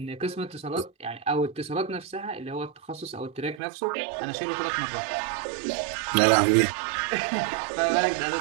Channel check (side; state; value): left; drops out; at 3.6 s